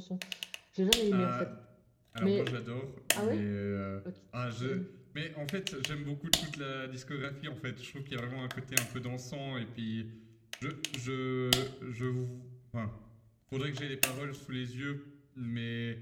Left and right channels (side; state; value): both; identical; correlation 1.00